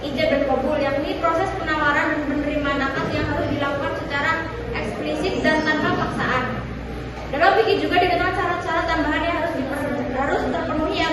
ijab dan qabul, yakni proses penawaran dan penerimaan akad yang harus dilakukan secara eksplisit dan tanpa paksaan. Dalam fikih juga dikenal syarat-syarat tambahan yang harus terpenuhi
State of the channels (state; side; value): identical; both; correlation 1.00